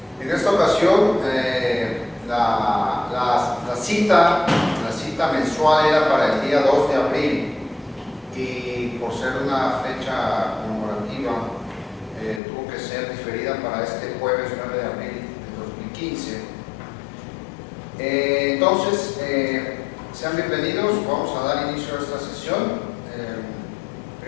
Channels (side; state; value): right; drops out; at 12.4 s